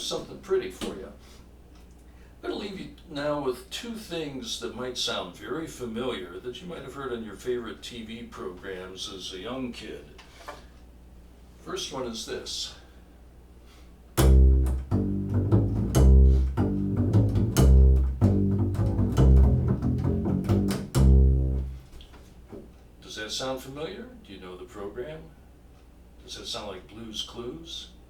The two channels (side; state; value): both; identical; correlation 1.00